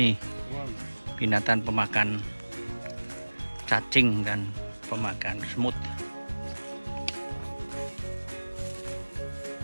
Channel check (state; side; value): inverted; both; correlation -1.00